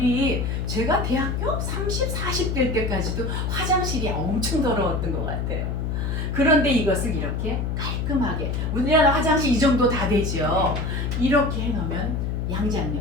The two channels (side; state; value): left; noise; hum, 1 dB below the sound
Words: 제가 대학교 30, 40대 때까지도 화장실이 엄청 더러웠던 것 같아요. 그런데 이것을 이렇게 깔끔하게, 우리나라 화장실 이 정도 다 되죠. 이렇게 해놓으면